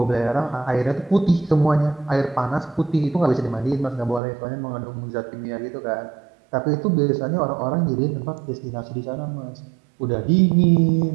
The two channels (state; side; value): drops out; left; at 4.2 s